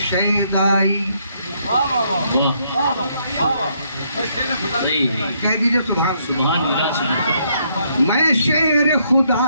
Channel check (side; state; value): both; inverted; correlation -0.72